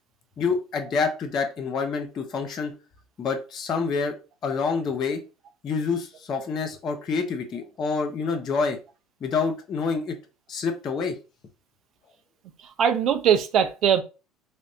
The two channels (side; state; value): both; normal; correlation 0.53